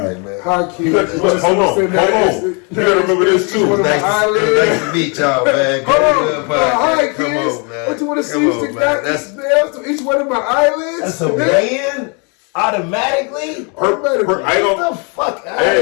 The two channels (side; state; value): right; quieter; 34.5 dB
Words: Hi, kids. Hold on. You gotta remember this too. Nice to meet y'all, man. Hold on. Hi, kids. What you want to see? That's each one of my eyelids. That's a man. Automatically? I don't. Get the fuck out of